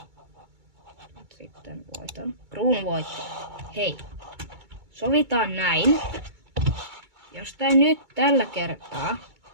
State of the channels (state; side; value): late; left; 2.3 ms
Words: Sitten voiton. Kruunu voitti. Hei. Sovitaan näin. Jos tää nyt tällä kertaa